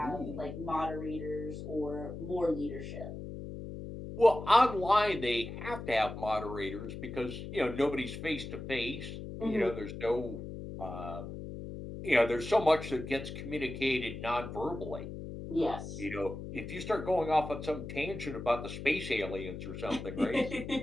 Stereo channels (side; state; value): left; noise; hum, 8 dB below the sound